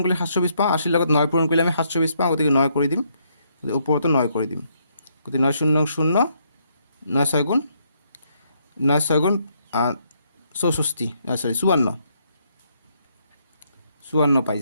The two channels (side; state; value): both; inverted; correlation -0.73